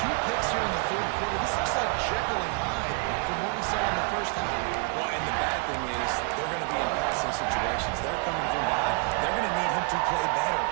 picks here in the third quarter. This looks like Jekyll and Hyde from what we saw in the first half. Well, and the bad thing is they're going to be in passing situations. They're coming from behind. They're going to need him to play better.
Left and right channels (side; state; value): left; quieter; 34.6 dB